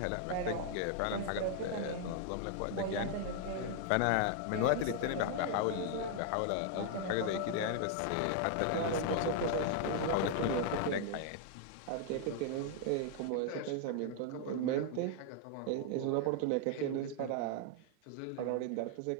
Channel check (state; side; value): different; both; correlation 0.00